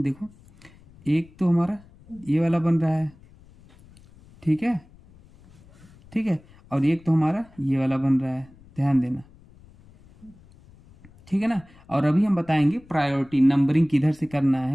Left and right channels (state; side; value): noise; left; rumble, 25 dB below the sound